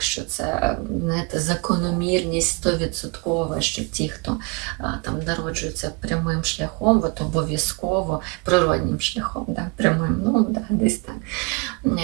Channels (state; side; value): quieter; left; 29.6 dB